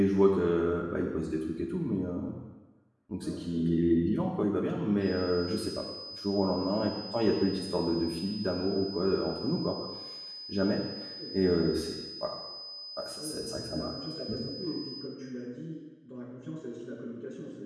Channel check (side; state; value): both; identical; correlation 1.00